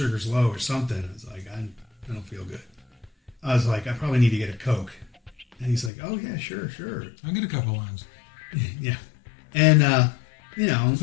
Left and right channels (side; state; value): right; drops out; at 5.9 s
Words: low or something. I was like, I don't feel good. I was like, I probably need to get a Coke. And he's like, oh, yeah, sure. I'll get a couple of lines. Yeah. And, It's